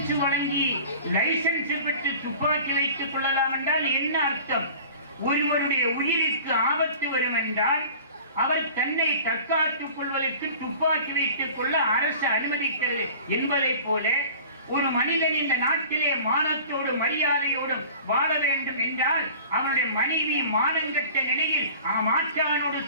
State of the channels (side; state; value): both; inverted; correlation -0.43